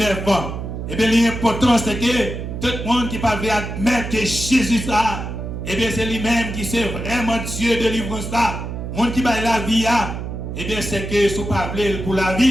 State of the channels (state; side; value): noise; right; hum, 6 dB below the sound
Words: Et bien l'important, c'est que tout le monde qui va admettre que Jésus ça, et bien c'est lui-même qui c'est vraiment Dieu de délivrance là. Le monde qui va la vie, et bien c'est que si vous parlez pour la